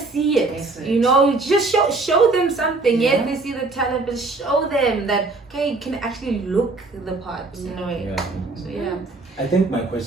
it. You know, just show them something. Yes, they see the talent, but show them that okay, you can actually look the part in a way. So I think my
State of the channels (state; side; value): quieter; left; 3.5 dB